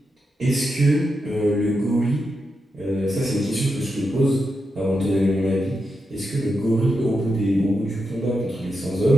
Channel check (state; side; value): normal; both; correlation 0.86